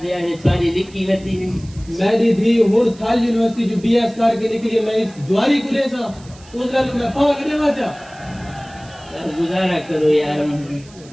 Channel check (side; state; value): right; noise; hiss, 24 dB below the sound